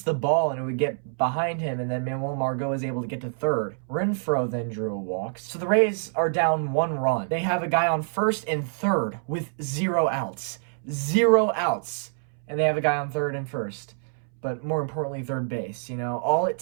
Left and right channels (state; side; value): silent; left; 61 dB below the other